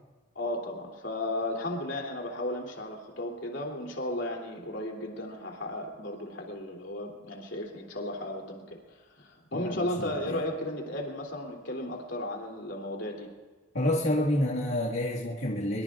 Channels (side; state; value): both; normal; correlation 0.27